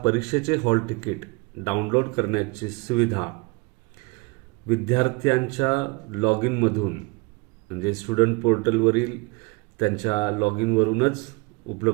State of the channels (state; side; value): quieter; left; 26.8 dB